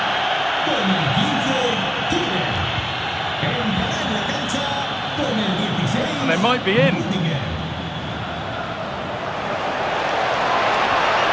And they might be in.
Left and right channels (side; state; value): both; identical; correlation 1.00